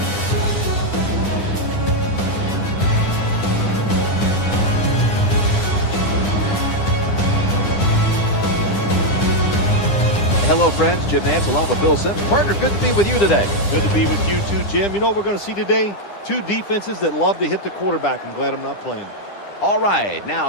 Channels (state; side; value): late; right; 9.9 ms